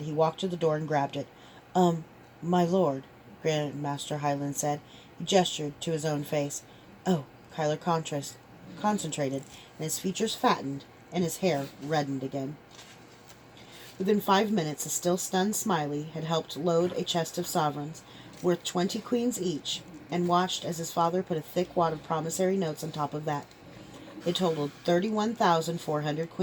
He walked to the door and grabbed it. My lord, Grandmaster Highland said. He gestured to his own face. Oh, Kyler concentrated, and his features fattened, and his hair reddened again. Within 5 minutes, a still stunned Smiley had helped load a chest of sovereigns, worth 20 queens each, and watched as his father put a thick wad of promissory notes on top of that. It totaled 31,400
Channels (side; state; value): both; identical; correlation 1.00